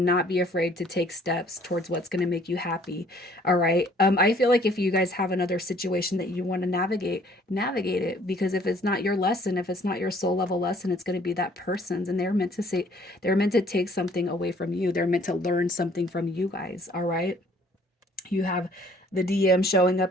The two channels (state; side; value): normal; both; correlation 0.59